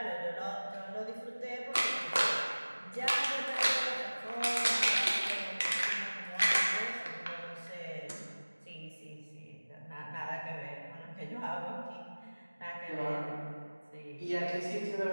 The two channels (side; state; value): both; inverted; correlation -1.00